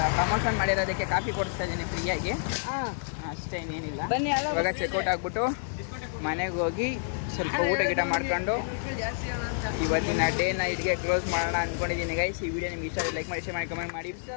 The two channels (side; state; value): right; silent; digital silence